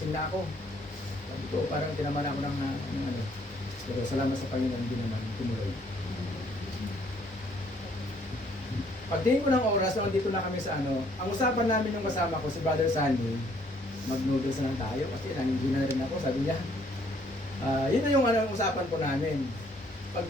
na ako. Sabi ko, parang tinaman ako ng pero salamat sa Panginoon, hindi naman tumuloy. Pagdating ko ng oras, nandito na kami sa ang usapan namin yung kasama ko, si Brother Sunny, mag-noodles na lang tayo kasi nandiyan na rin ako, sabi niya. Yun na yung usapan po namin.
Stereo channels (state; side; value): normal; both; correlation 0.64